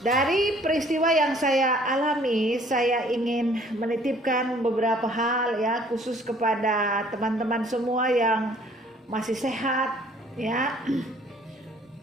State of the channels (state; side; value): normal; both; correlation 0.57